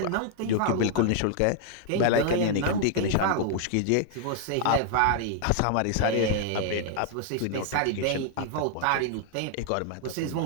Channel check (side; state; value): both; different; correlation 0.00